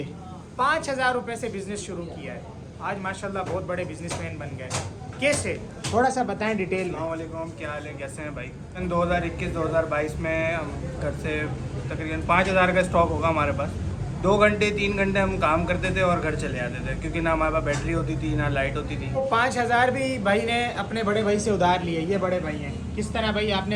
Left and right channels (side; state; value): both; identical; correlation 1.00